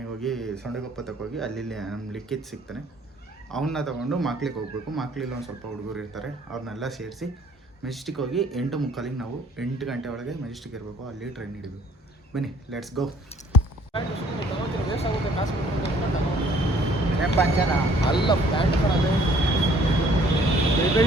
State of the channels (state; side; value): normal; both; correlation 0.59